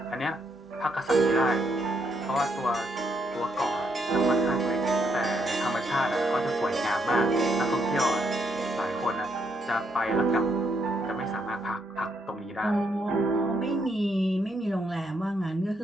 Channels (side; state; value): both; normal; correlation 0.75